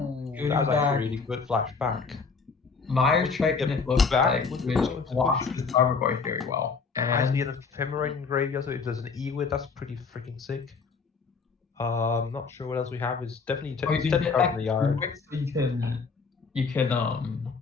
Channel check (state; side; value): quieter; right; 4.9 dB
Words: Good that was back. actually a really good flashback. Meyer What's he Triton, get it looks back? like, What's which the blocks position? his Tarmogoyf very well. I see And an ephemerate in graveyard, so if there's an Ewit, that's pretty freaking sick. Not sure what else we have. Is definitely or you can 10 get cards back in the yard. Ewit, so you can